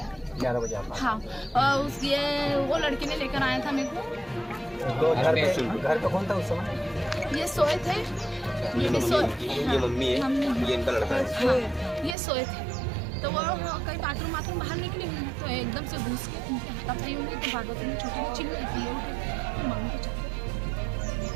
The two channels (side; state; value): left; drops out; at 12.2 s